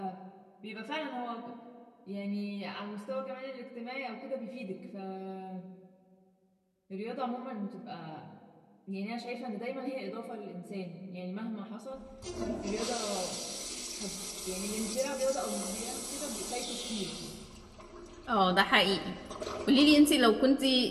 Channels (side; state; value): both; identical; correlation 1.00